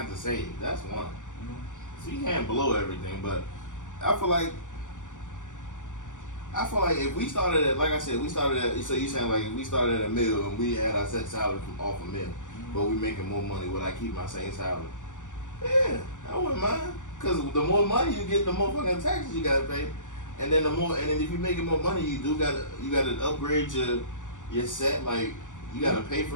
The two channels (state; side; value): late; right; 0.86 ms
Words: have to save. That's one. So you can't blow everything, but I feel like if we started at, like I said, so you saying like if we started at $1 million and we had our set salary from off $1 million, but we making more money, would I keep my same salary? Yeah, I wouldn't mind. Cause the more money you get, the more fucking taxes you gotta pay, and then if you're making more money, you gotta upgrade your set. Like you gotta pay